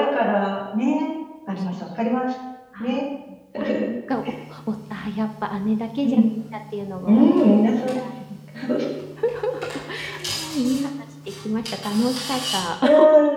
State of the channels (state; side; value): identical; both; correlation 1.00